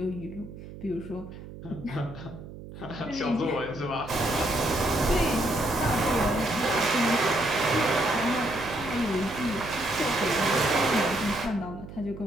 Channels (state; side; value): noise; right; hum, 14 dB below the sound